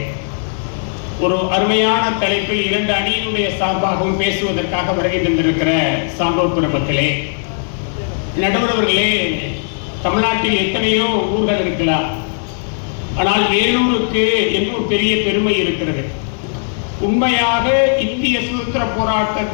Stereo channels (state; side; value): silent; right; digital silence